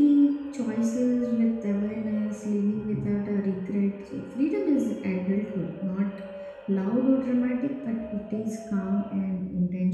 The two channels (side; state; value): both; identical; correlation 1.00